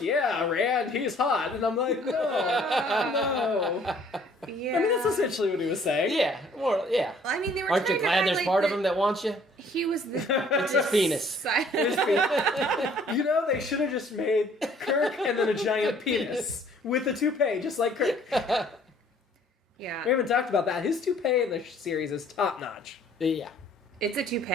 yeah, Rand, he's hot. And I'm like, no. Yeah. I mean, that's essentially what he was saying. Yeah. Well, yeah. I mean, they were Aren't you glad there's part of him that wants you? He was the... It's his penis. They should have just made Kirk and then a giant penis with a toupee, just like Kirk. Yeah. We haven't talked about that. His toupee in the series is top notch. Yeah. It's a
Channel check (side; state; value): both; normal; correlation 0.58